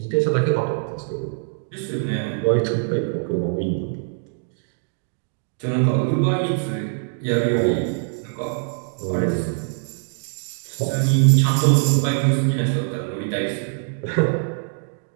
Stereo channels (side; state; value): left; silent; digital silence